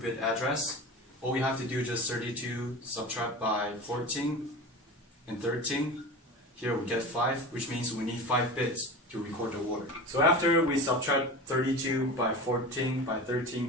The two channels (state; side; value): normal; both; correlation 0.31